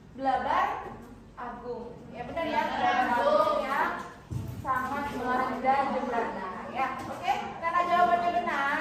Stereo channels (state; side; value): identical; both; correlation 1.00